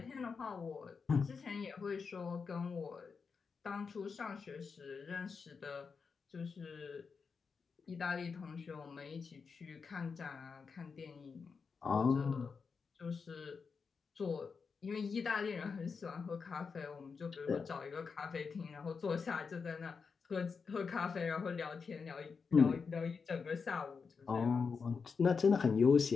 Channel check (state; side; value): quieter; right; 5.4 dB